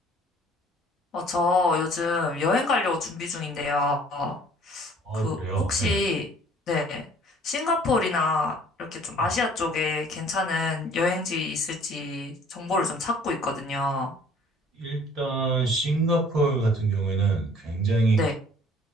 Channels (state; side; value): normal; both; correlation 0.55